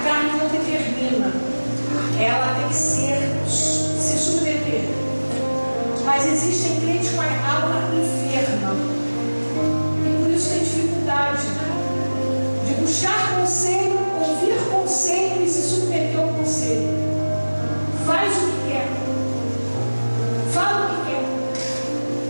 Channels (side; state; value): both; inverted; correlation -1.00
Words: carne não determina. Ela tem que se submeter. Mas existem crentes com a alma enferma. E por isso tem dificuldade de buscar conselho, ouvir conselho e se submeter ao conselho. Faz o que quer. Fala o que quer.